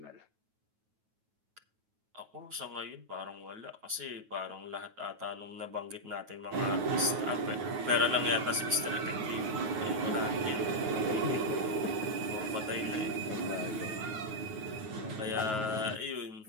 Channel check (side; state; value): left; late; 9.3 ms